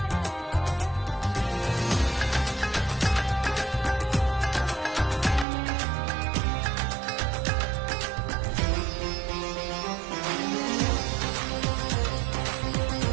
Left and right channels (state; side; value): drops out; left; at 5.5 s